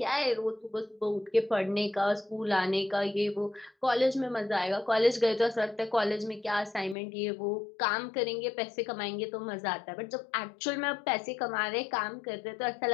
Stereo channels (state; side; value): drops out; right; at 7.0 s